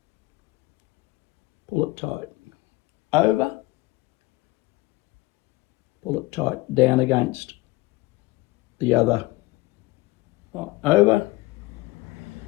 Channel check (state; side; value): quieter; right; 20.7 dB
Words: pull it tight, over, pull it tight, down against the other, over,